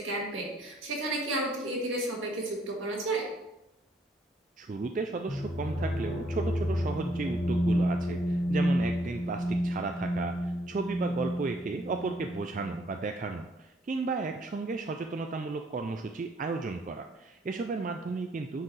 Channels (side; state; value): both; normal; correlation 0.67